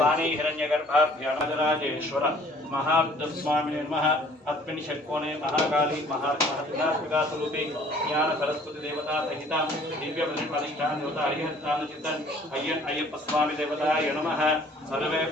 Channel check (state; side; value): normal; both; correlation 0.55